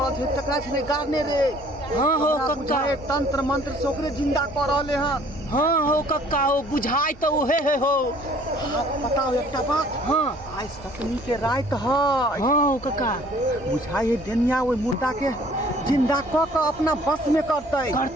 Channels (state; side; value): normal; both; correlation 0.55